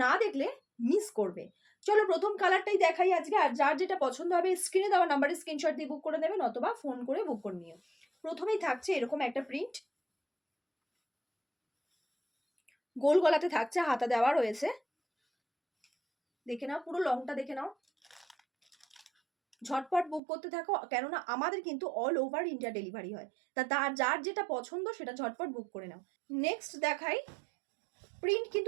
না দেখলে মিস করবে। চলো প্রথম কালারটাই দেখাই আজকে, আর যার যেটা পছন্দ হবে স্ক্রিনে দেওয়া নাম্বারে স্ক্রিনশট দিয়ে বুক করে নেবেন অথবা ফোন করে বুক করে নিও। প্রথমেই থাকছে এরকম একটা প্রিন্ট, গোল গলাতে থাকছে, হাতা দেওয়া রয়েছে। দেখে নাও, পুরো লংটা দেখে নাও। ঝটপট বুক করতে থাকো, কেননা আমাদের কিন্তু অল ওভার ইন্ডিয়া ডেলিভারি হয়। তার যার যেটা পছন্দ সেটা ঝটপট বুক করে নাও। নেক্সট দেখাই, প্রিন্ট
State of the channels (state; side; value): drops out; left; at 20.2 s